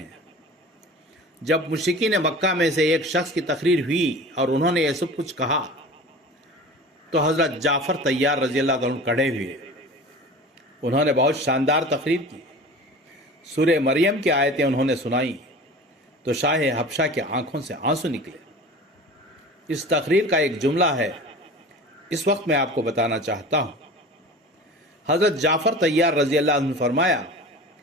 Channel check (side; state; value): both; normal; correlation 0.38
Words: جب مشرکین مکہ میں سے ایک شخص کی تقریر ہوئی اور انہوں نے یہ سب کچھ کہا تو حضرت جعفر طیار رضی اللہ عنہ کھڑے ہوئے۔ انہوں نے بہت شاندار تقریر کی، سورہ مریم کی آیتیں انہوں نے سنائیں تو شاہ حبشہ کے آنکھوں سے آنسو نکلے۔ اس تقریر کا ایک جملہ ہے، اس وقت میں آپ کو بتانا چاہتا ہوں۔ حضرت جعفر طیار رضی اللہ عنہ فرمایا